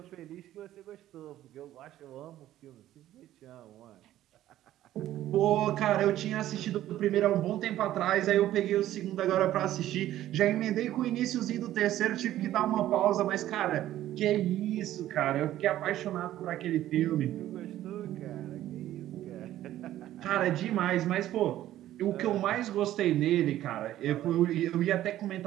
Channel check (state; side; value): quieter; left; 13.4 dB